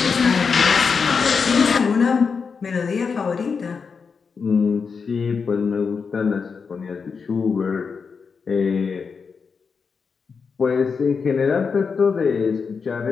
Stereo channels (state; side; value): quieter; right; 5.5 dB